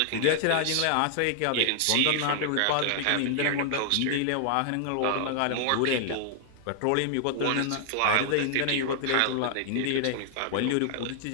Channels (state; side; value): different; both; correlation 0.00